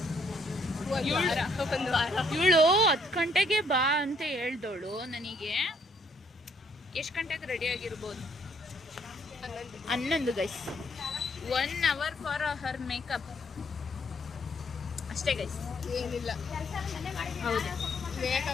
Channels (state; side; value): normal; both; correlation 0.68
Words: ಇವಳು 10 ಗಂಟೆಗೆ ಬಾ ಅಂತ ಹೇಳ್ದವಳು ನನಗೆ. ಎಷ್ಟು ಗಂಟೆಗೆ ರೆಡಿ ಆಗಿರ್ಬೋದು? 11 guys. 1 hour for her makeup ಅಷ್ಟೇ ಗೈಸ್, ಏನಿಲ್ಲ. ಹೌದು,